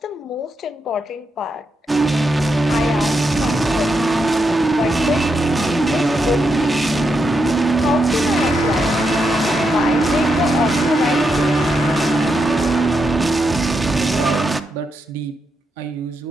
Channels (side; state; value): both; normal; correlation 0.83